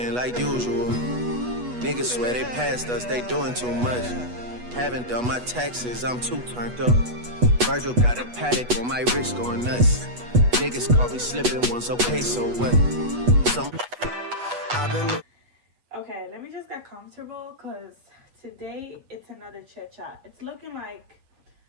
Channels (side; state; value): left; late; 8.2 ms